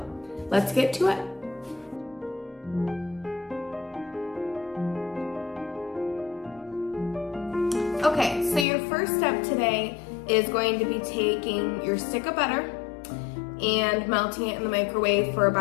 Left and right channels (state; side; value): drops out; right; at 8.7 s